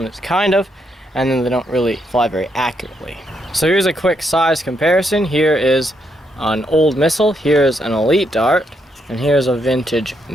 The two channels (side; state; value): both; normal; correlation 0.77